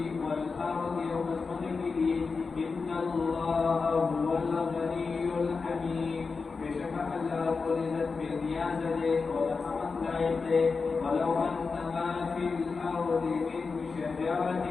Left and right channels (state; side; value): quieter; right; 4.6 dB